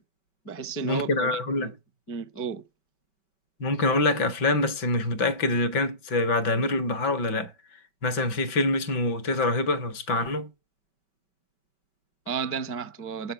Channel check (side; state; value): right; late; 5.2 ms